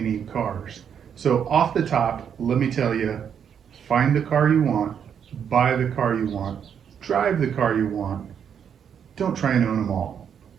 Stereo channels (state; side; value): quieter; left; 8.0 dB